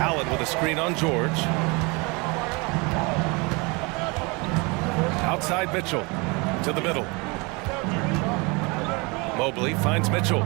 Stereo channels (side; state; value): left; quieter; 28.1 dB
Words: Allen with a screen on George. Outside Mitchell to the middle. Mobley finds Mitchell.